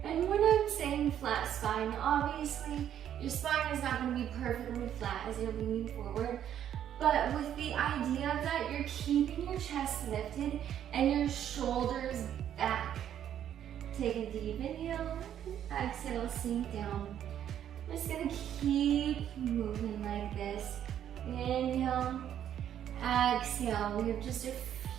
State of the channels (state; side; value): quieter; left; 10.2 dB